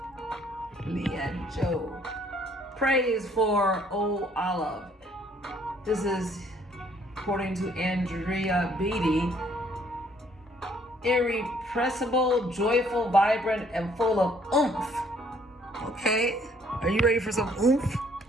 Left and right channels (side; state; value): both; normal; correlation 0.63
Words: Leanne Joe. Praise for Oh Olive. This is, according to Andrea Beatty, irrepressible, joyful, vibrant, and full of oomph. Okay, are you ready for some oomph